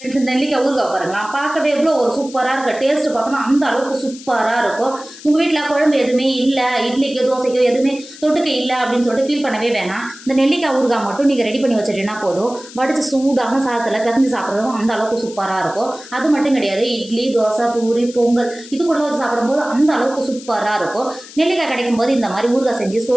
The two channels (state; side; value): noise; left; hiss, 17 dB below the sound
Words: நெல்லிக்காய் ஊறுகாய் பாருங்களா, பார்க்கவே எவ்வளோ ஒரு சூப்பராக இருக்கு. டேஸ்ட் பார்த்தோம்னா அந்த அளவுக்கு சூப்பராக இருக்கும். உங்கள் வீட்டில் குழம்பு எதுவுமே இல்லை, இட்லிக்கோ தோசைக்கோ எதுவுமே தொட்டுக்க இல்லை அப்படின்னு சொல்லிட்டு ஃபீல் பண்ணவே வேணாம். இந்த நெல்லிக்காய் ஊறுகாய் மட்டும் நீங்கள் ரெடி பண்ணி வச்சுட்டீங்கன்னா போதும். வடிச்சு சூடான சாதத்தில் பிசைஞ்சு சாப்பிட்றதும் அந்த அளவுக்கு சூப்பராக இருக்கும். அது மட்டும் கிடையாது, இட்லி, தோசை, பூரி, பொங்கல் இது கூட வச்சு சாப்பிடும்போது அந்த அளவுக்கு சூப்பராக இருக்கும். நெல்லிக்காய் கிடைக்கும் போது இந்த மாதிரி ஊறுகாய் செஞ்சு